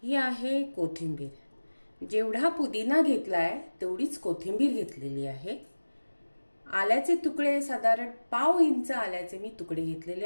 ही आहे कोथिंबीर। जेवढा पुदिना घेतलाय तेवढीच कोथिंबीर घेतलेली आहे। आल्याचे तुकडे साधारण पाव इंच आल्याचे मी तुकडे घेतलेले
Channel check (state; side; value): inverted; both; correlation -1.00